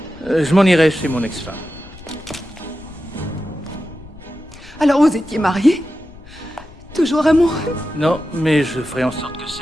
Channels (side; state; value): left; noise; rumble, 19 dB below the sound